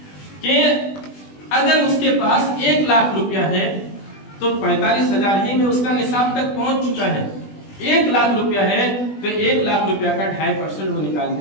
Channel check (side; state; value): right; late; 20 ms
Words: کہ اگر اس کے پاس 1 لاکھ روپیہ ہے تو 45,000 ہی میں اس کا نصاب تک پہنچ چکا ہے۔ 1 لاکھ روپیہ ہے تو 1 لاکھ روپیہ کا 2.5% وہ نکال